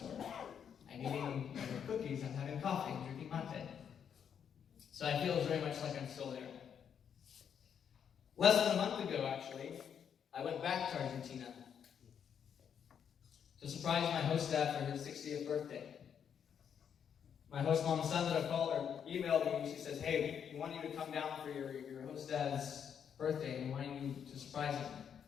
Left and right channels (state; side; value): quieter; right; 8.0 dB